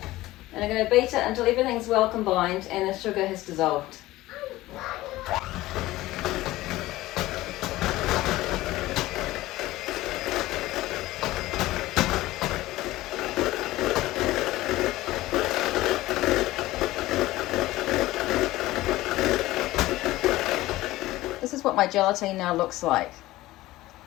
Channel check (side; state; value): right; quieter; 17.3 dB